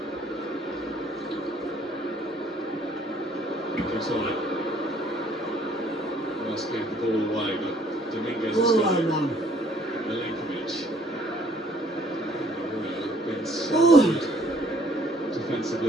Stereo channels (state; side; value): normal; both; correlation 0.61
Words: Inside. Must give the ball away, but Dominguez has Oh, got it. man. Milinkovic. Been so Oh. good